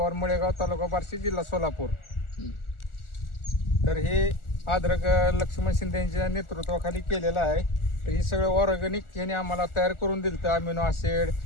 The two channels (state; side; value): late; right; 1.4 ms